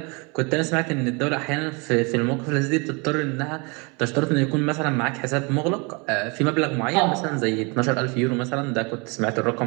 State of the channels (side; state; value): left; quieter; 30.0 dB